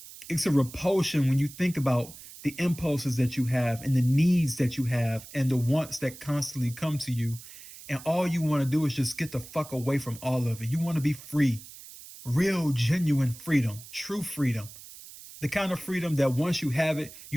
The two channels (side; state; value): right; noise; hiss, 17 dB below the sound